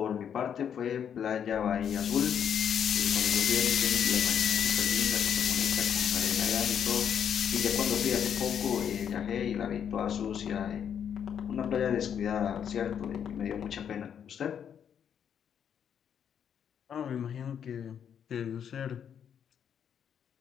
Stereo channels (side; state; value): right; quieter; 8.4 dB